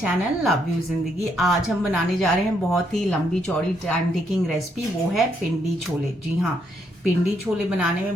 love you जिंदगी। आज हम बनाने जा रहे हैं बहुत ही लंबी चौड़ी टाइम टेकिंग रेसिपी, वो है पिंडी छोले। जी हाँ, पिंडी छोले बनाने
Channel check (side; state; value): both; normal; correlation 0.75